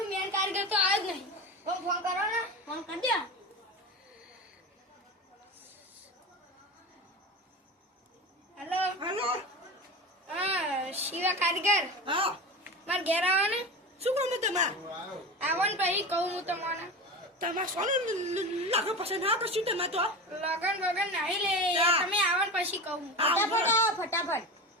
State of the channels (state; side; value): normal; both; correlation 0.27